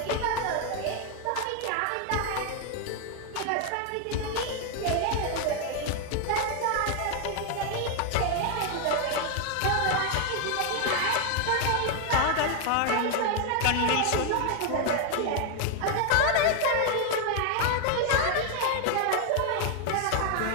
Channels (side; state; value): both; different; correlation 0.01